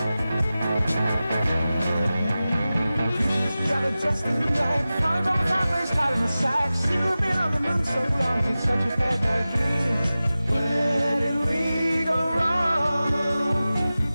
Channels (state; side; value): inverted; both; correlation -0.95